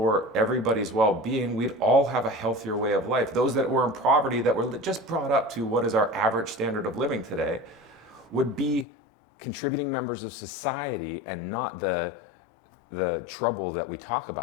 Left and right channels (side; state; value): right; drops out; at 8.8 s